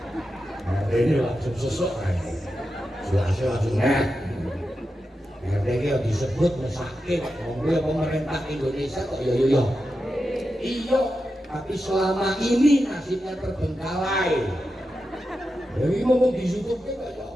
Nah, ini langsung sesok jelasnya langsung RT ini disebut mesake ngomongnya pemerintah Indonesia kok iya tapi selama ini nasibnya terbengkalai. Jadi ngomong di YouTube kan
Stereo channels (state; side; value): normal; both; correlation 0.89